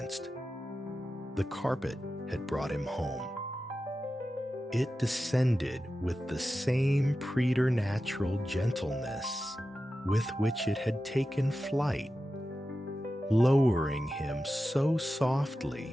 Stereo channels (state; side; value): normal; both; correlation 0.92